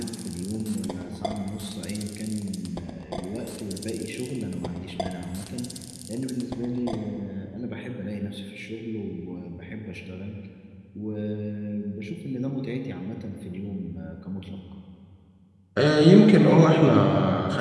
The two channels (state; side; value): identical; both; correlation 1.00